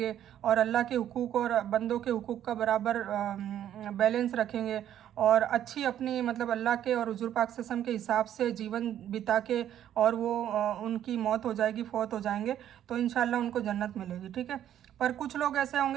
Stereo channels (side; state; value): left; quieter; 10.9 dB